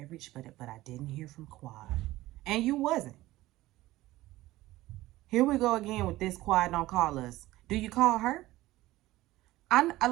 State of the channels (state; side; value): quieter; left; 17.2 dB